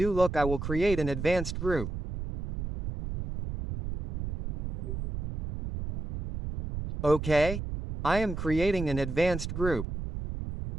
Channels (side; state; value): right; noise; rumble, 5 dB below the sound